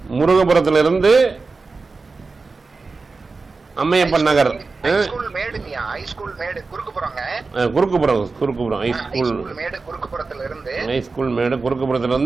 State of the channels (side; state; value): left; quieter; 4.1 dB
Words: முருகபுரத்துல இருந்து அம்மையப்பன் நகர் ஹைஸ்கூல் மேடுங்கய்யா. ஹைஸ்கூல் மேடு குறுக்குப்புறங்க. குறுக்குப்புறம் ஹைஸ்கூல் மேடு குறுக்குப்புறத்துல இருந்து. ஹைஸ்கூல் மேடு குறுக்குப்புறத்துல